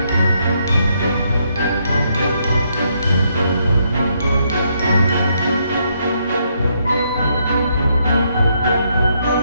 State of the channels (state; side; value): inverted; both; correlation -0.75